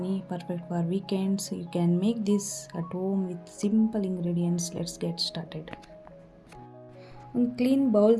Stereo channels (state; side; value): identical; both; correlation 1.00